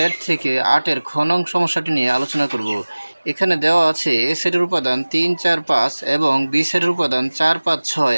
থেকে 8-এর খ নং সমস্যাটি নিয়ে আলোচনা করব। এখানে দেওয়া আছে এ সেটের উপাদান 3, 4, 5 এবং বি সেটের উপাদান 4, 5, 6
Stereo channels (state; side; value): inverted; both; correlation -1.00